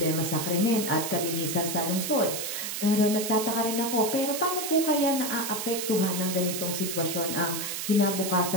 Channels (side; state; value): right; noise; hiss, 4 dB below the sound